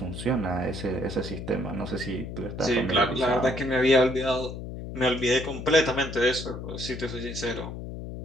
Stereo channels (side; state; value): left; noise; hum, 8 dB below the sound